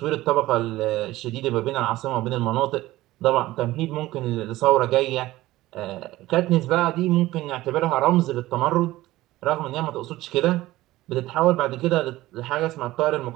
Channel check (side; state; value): left; quieter; 17.1 dB